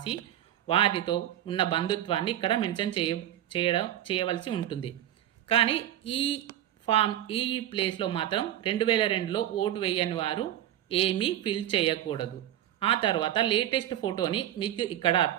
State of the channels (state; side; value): quieter; left; 12.3 dB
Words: వారితో ఉన్న బంధుత్వాన్ని ఇక్కడ మెన్షన్ చేయవలసి ఉంటుంది. కానీ ఈ ప్లేస్లో మాత్రం 2002లో ఓటు వేయని వారు ఏమీ ఫిల్ చేయకూడదు. ఆ తర్వాత లేటెస్ట్ ఫోటోని మీకు ఇక్కడ